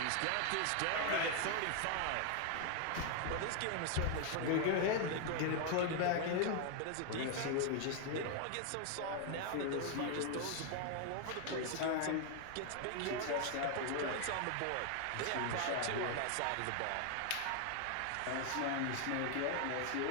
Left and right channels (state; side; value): different; both; correlation 0.00